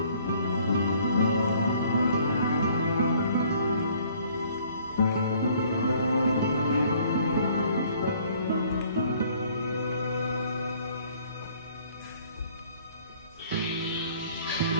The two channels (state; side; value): inverted; both; correlation -0.58